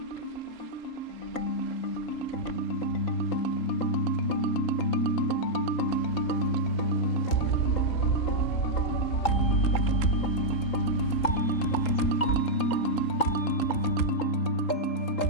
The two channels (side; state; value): right; late; 3.8 ms